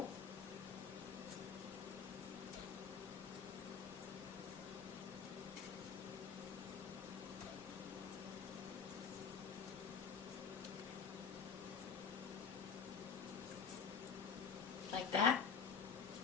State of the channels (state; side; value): quieter; right; 6.3 dB